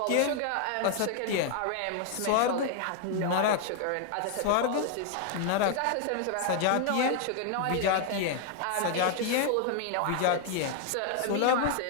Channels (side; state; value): both; different; correlation 0.00